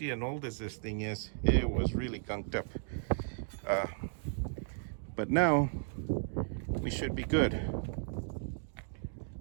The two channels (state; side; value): silent; left; digital silence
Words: and old as this thing is, it was really gunked up. But now we should be good.